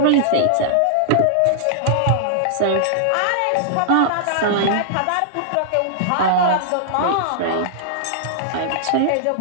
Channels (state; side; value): different; both; correlation -0.01